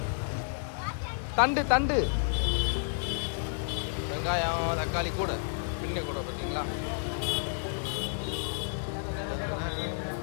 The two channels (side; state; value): right; silent; digital silence